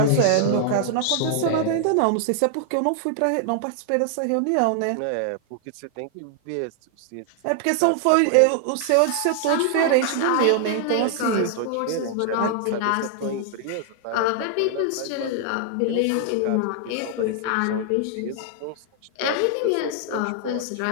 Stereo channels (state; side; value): different; both; correlation 0.00